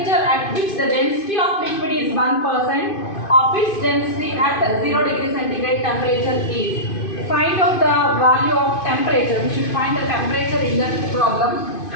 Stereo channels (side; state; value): right; late; 2.5 ms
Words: at which the density of liquid is 1% of its density at 0 degree centigrade temperature is. Find out the value of temperature. We should find the temperature in the problem.